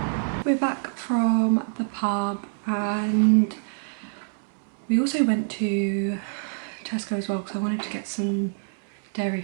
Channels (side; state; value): left; silent; 61 dB below the other